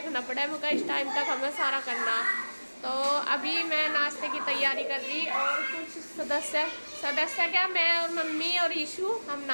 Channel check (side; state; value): both; inverted; correlation -1.00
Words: पड़े, मुझे इस टाइम तक हमें सारा करना। तो अभी मैं नाश्ते की तैयारी कर रही और कुछ सदस्य क्या, मैं और मम्मी और ईशू हम